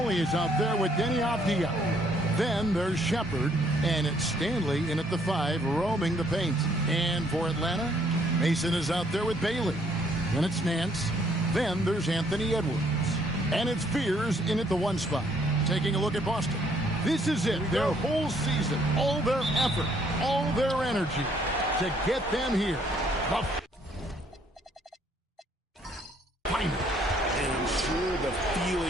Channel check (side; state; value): both; normal; correlation 0.66